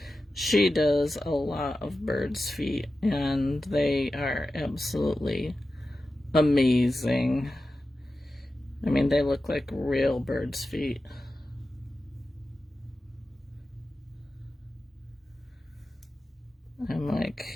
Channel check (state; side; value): normal; both; correlation 0.93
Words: She does a lot of birds' feet, and they are absolutely amazing. I mean, they look like real birds' feet. I'm